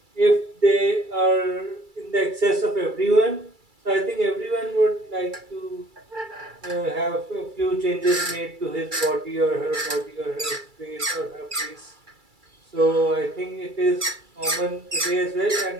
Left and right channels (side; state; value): left; late; 2.3 ms